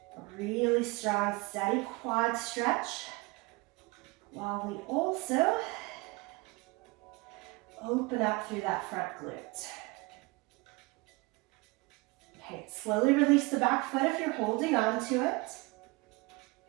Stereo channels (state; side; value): quieter; left; 24.5 dB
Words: a really strong, steady quad stretch, while we also open up through that front glute. Okay, slowly release the back foot if you're holding on to it.